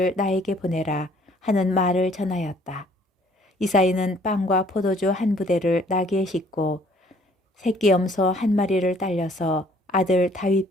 나에게 보내라 하는 말을 전하였다. 이사이는 빵과 포도주 한 부대를 나귀에 싣고 새끼 염소 한 마리를 딸려서 아들 다윗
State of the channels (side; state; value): both; normal; correlation 0.59